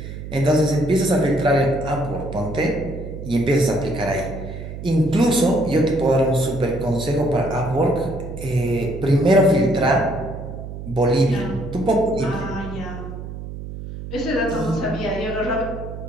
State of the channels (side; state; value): right; noise; hum, 10 dB below the sound